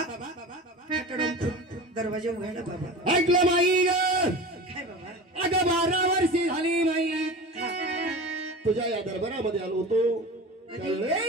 दरवाजा उघडला. बाबा ऐकलं माई ग. काय बाबा? अगं 12 वर्षी झाली माई हा. तुझ्या या दरबारामध्ये आलो होतो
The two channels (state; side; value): normal; both; correlation 0.33